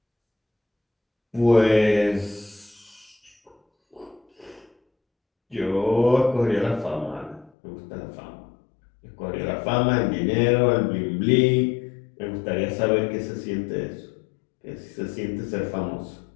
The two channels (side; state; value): right; drops out; at 7.5 s